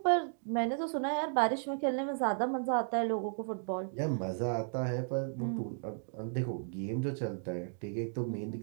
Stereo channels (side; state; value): left; silent; digital silence